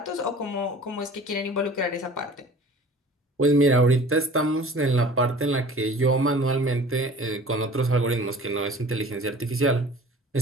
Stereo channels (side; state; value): both; normal; correlation 0.45